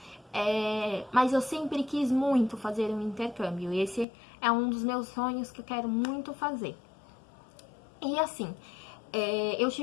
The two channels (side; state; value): right; drops out; at 4.0 s